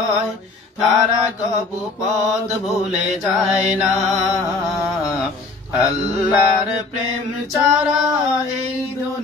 তারা কবু পথ ভুলে যায় না। আল্লাহর প্রেম ছাড়া এই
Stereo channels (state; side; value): quieter; right; 3.8 dB